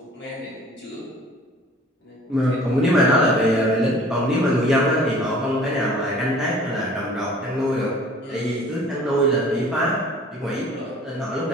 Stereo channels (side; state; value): both; normal; correlation 0.49